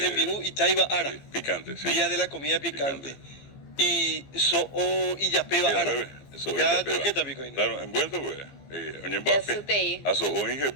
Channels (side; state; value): right; late; 15 ms